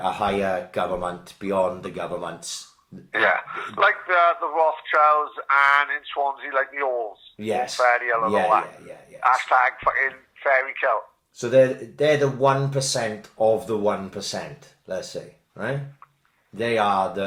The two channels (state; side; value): identical; both; correlation 1.00